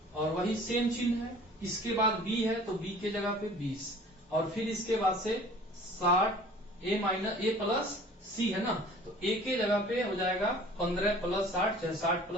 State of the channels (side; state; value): both; normal; correlation 0.47